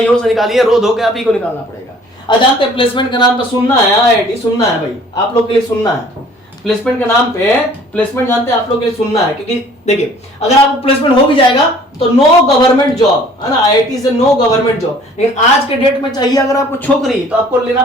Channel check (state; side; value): normal; both; correlation 0.53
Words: और से निकालिए, रो धो के आप ही को निकालना पड़ेगा। जानते हैं प्लेसमेंट के नाम पे सुनना है, आईआईटी सुनना है भाई, आप लोग के लिए सुनना है। प्लेसमेंट के नाम पे, प्लेसमेंट जानते हैं आप लोग के लिए सुनना है, क्योंकि देखिए अगर आपको प्लेसमेंट हो भी जाएगा तो नो गवर्नमेंट जॉब, है ना, आईआईटी से नो गवर्नमेंट जॉब। लेकिन आज के डेट में चाहिए अगर आपको छोकरी तो आपको लेना